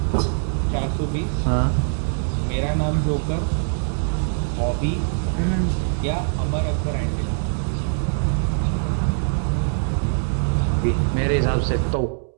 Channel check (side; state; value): left; silent; digital silence